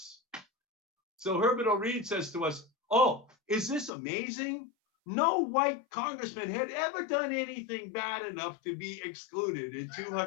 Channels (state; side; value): drops out; right; at 3.9 s